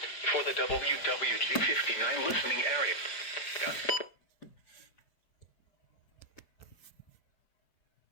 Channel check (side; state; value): right; late; 5.0 ms